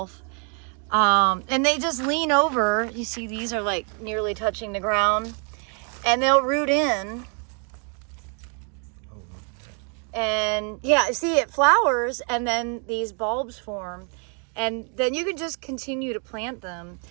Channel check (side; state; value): left; quieter; 39.9 dB